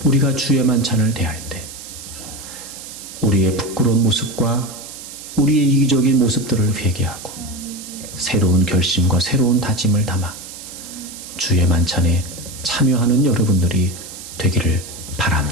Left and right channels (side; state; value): right; noise; hiss, 13 dB below the sound